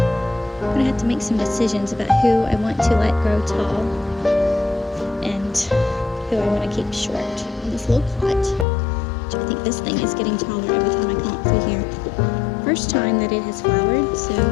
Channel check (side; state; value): right; drops out; at 8.7 s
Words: gonna have to make some decisions about who I want to let grow tall and who I want to keep short. And this low plot, which I think this thing is getting taller every time I come up through here. First time that it has flowered, so